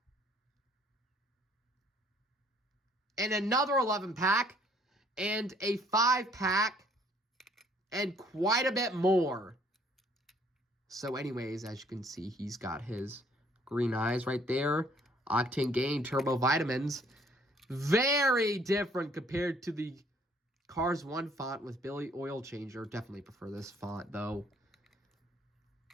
And another 11-pack. And a 5-pack. And quite a bit more. So anyways, as you can see, he's got his green eyes right there. Octane Gain Turbo Vitamins. Very different compared to the Cars 1 font with Billy Oil Changer. Definitely prefer this font, though.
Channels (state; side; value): normal; both; correlation 0.61